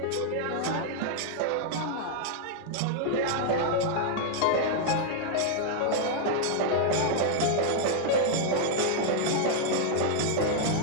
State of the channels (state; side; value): different; both; correlation 0.00